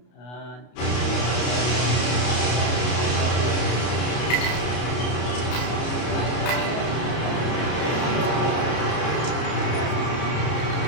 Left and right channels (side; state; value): right; late; 33 ms